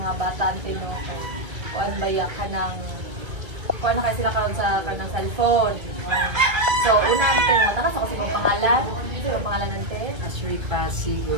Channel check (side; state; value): left; late; 1.9 ms